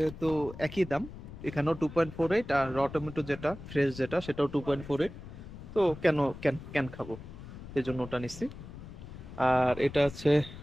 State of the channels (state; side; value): noise; left; rumble, 13 dB below the sound